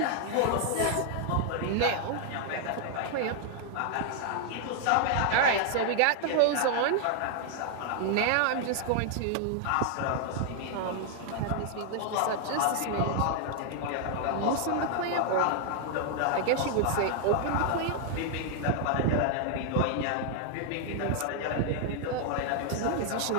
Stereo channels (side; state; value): both; different; correlation 0.00